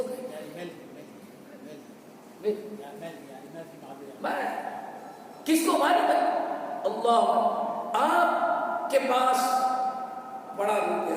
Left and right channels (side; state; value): both; identical; correlation 1.00